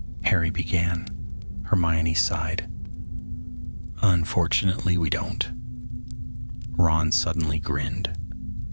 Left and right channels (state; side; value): inverted; both; correlation -1.00